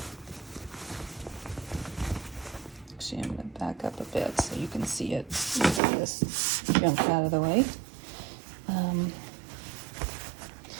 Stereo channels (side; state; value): left; drops out; at 5.8 s